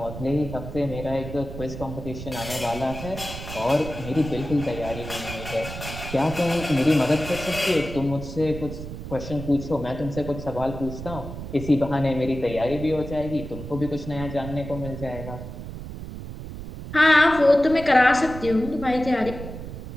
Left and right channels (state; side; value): noise; right; rumble, 10 dB below the sound